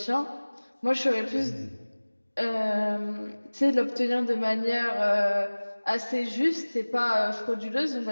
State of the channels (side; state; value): both; inverted; correlation -1.00